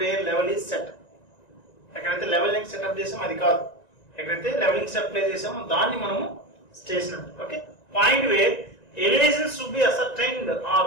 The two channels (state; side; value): late; right; 1.9 ms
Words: level is set. ఎక్కడైతే levelling setup చేసామో అది కాదు, ఎక్కడైతే levelling set play చేసామో దాన్ని మనము station అంటాం. Okay, point where elevations to be ascertained